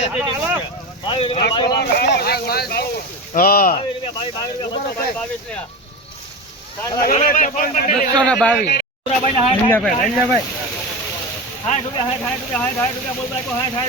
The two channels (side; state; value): both; normal; correlation 0.24